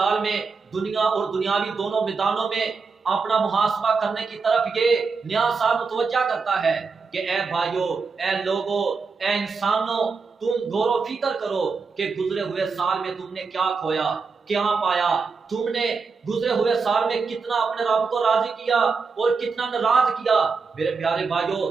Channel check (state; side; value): quieter; left; 4.8 dB